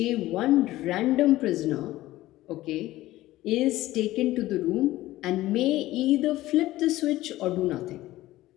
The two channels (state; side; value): quieter; right; 16.4 dB